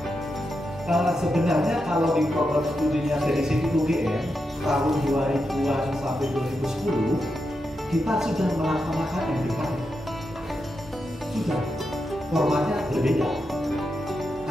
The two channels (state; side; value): normal; both; correlation 0.86